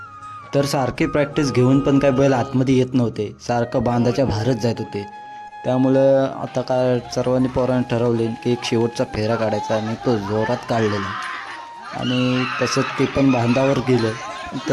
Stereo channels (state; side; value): identical; both; correlation 1.00